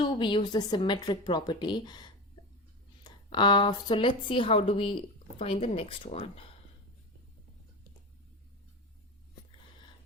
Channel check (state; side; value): normal; both; correlation 0.25